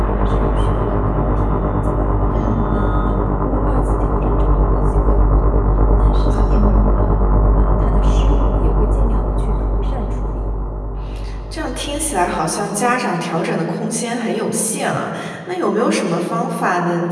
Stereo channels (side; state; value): both; identical; correlation 1.00